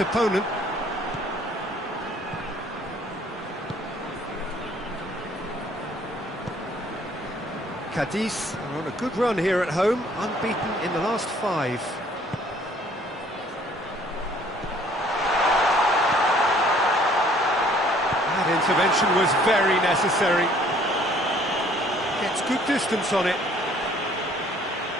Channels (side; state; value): both; normal; correlation 0.59